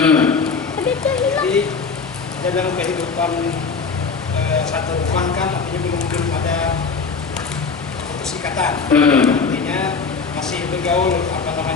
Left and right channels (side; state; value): right; quieter; 5.0 dB